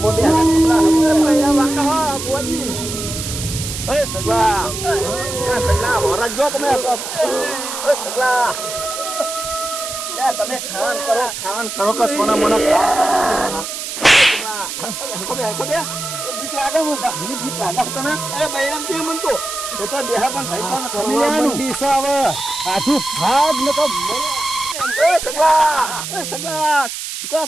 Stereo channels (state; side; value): noise; right; hiss, 6 dB below the sound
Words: દે, કમલા હમો દે પૈડા વાકા હો બોજી. એ સગલા, સગલા હોરા જો તમે. એ સગલા તમે ખાવાનું કરો કે સોના મોના બીક લાગે મને બીક લાગે તને. અરે બૈરામ કે મન તો દેહા પણ ભાઈ હવે આઠું ભાગ ન તો. એ સગલા ચુકા